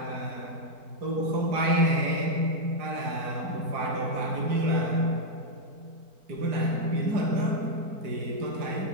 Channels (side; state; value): left; late; 4.5 ms